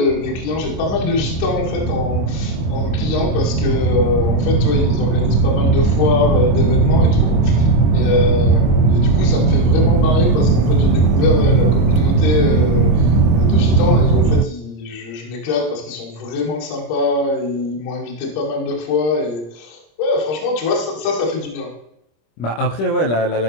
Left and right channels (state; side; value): late; right; 26 ms